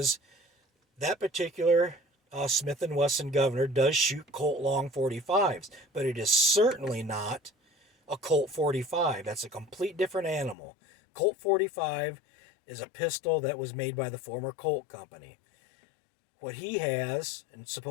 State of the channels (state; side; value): drops out; right; at 10.6 s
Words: that particular Smith & Wesson Governor does shoot Colt long 45s, but it is certainly not a Colt 45. That's a complete different animal. Colt 45 is a pistol that was made by the former Colt company. What he has and